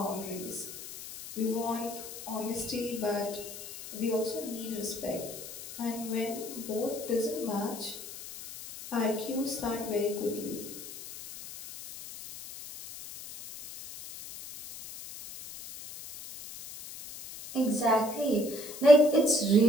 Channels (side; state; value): left; noise; hiss, 12 dB below the sound